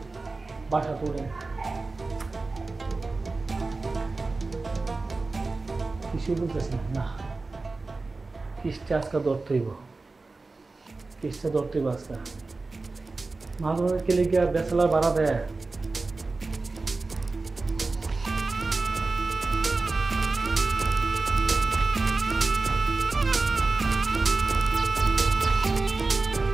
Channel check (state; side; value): quieter; left; 3.6 dB